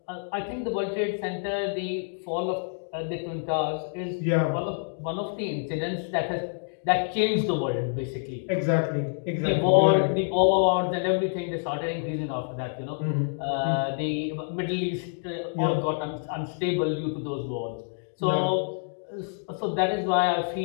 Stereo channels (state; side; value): silent; right; digital silence